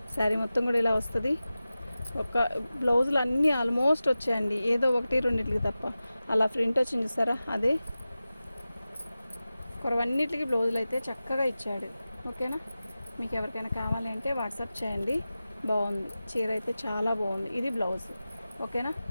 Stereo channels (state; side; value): inverted; both; correlation -0.95